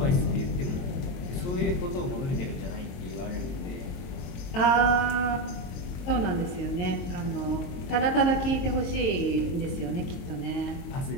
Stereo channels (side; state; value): right; late; 22 ms